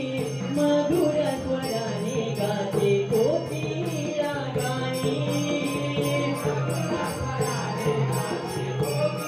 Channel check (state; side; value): identical; both; correlation 1.00